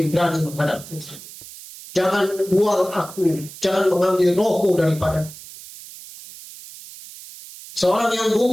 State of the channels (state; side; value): noise; right; hiss, 16 dB below the sound